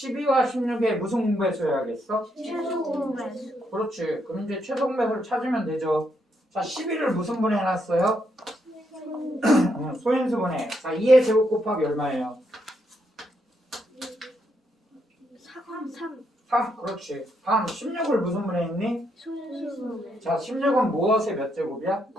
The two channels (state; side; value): normal; both; correlation 0.77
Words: 16의 무슨 공배수여야겠어? 최소 공배수. 그렇지. 그럼 이제 최소 공배수를 찾으면 되죠. 자, 12를 무슨 분해 해놨어요? 소인수분해. 자, 2의 제곱 곱하기 얼마예요? 3. 3. 그렇지. 다음 16을 무슨 분해했니? 소인수분해. 자, 16은 무엇의 몇 제곱이야?